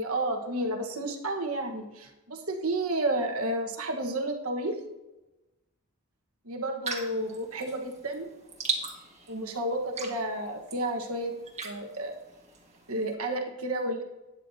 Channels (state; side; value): normal; both; correlation -0.19